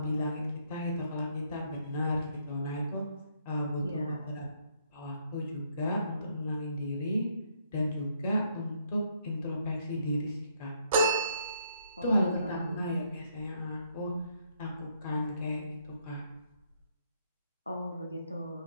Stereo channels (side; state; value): both; inverted; correlation -0.71